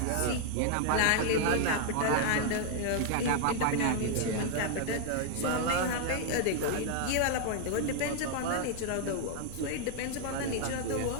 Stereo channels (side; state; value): both; different; correlation 0.00